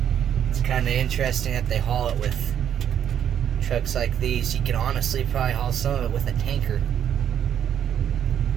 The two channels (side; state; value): left; quieter; 9.5 dB